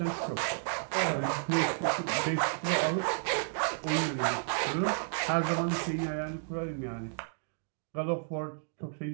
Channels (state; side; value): silent; left; digital silence